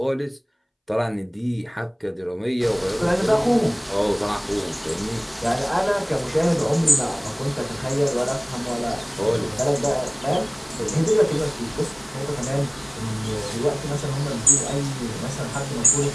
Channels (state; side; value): identical; both; correlation 1.00